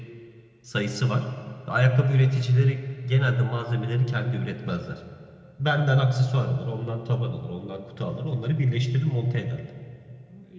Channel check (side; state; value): both; identical; correlation 1.00